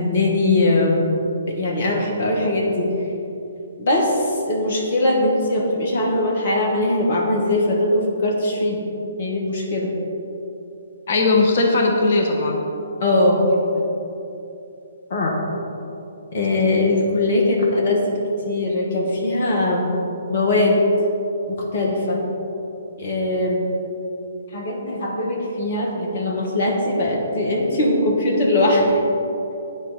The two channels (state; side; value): inverted; both; correlation -0.57